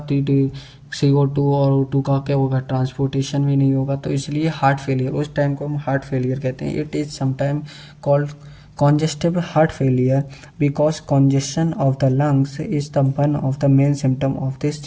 CO2 और O2 का क्या होगा, ट्रांसपोर्टेशन भी नहीं होगा। तो इसलिए हार्ट फेलियर, उस टाइम को हम हार्ट फेलियर कहते हैं। It is sometime called congestive heart failure because congestion of the lungs is the one of the main symptom of this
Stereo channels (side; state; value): both; identical; correlation 1.00